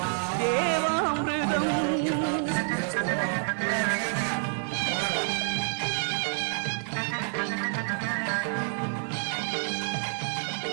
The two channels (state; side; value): silent; left; 59 dB below the other